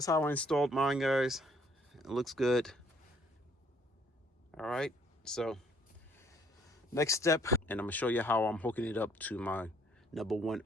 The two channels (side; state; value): both; normal; correlation 0.64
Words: how I installed mine, guys. It looks good. All right, so next step, and I'm gonna show you how I'm hooking it up to my number one